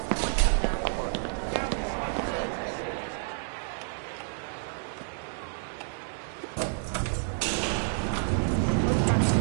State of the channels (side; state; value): left; silent; digital silence